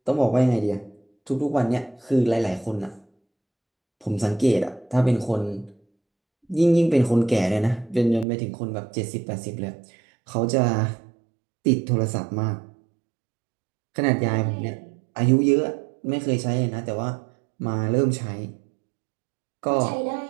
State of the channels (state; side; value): drops out; left; at 8.2 s